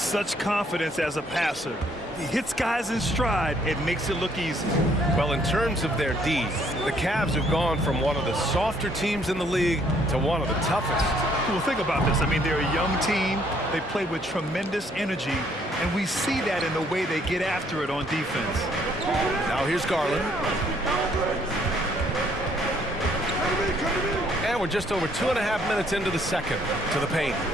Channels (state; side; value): normal; both; correlation 0.66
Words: confidence as a passer. He hits guys in stride. It makes it look easy. Well, in terms of their D, the Cavs have gone from one of the softer teams in the league to one of the toughest. Well, think about this. I mean, they're a young team. They play with tremendous energy, and we see that in the way they get after it on defense. Now here's Garland. And we're just over 2.5 minutes into the second to the paint.